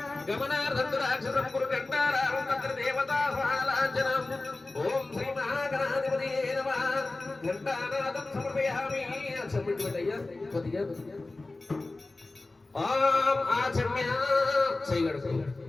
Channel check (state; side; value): quieter; right; 3.2 dB